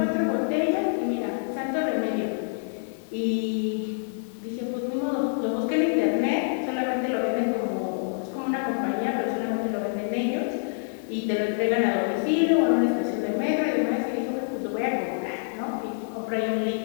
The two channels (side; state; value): right; silent; digital silence